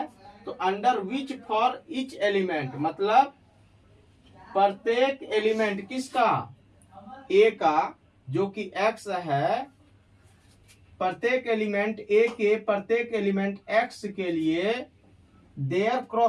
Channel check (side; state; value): both; identical; correlation 1.00